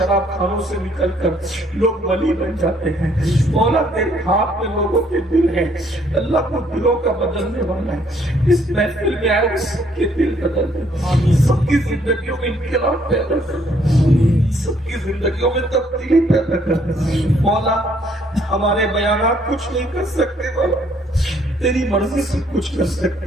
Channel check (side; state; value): both; normal; correlation 0.66